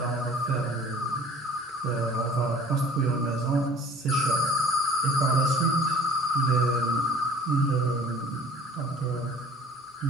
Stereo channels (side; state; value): both; normal; correlation 0.49